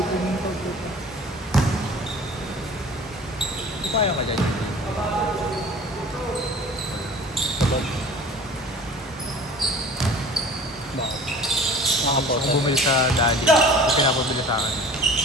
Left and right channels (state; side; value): normal; both; correlation 0.44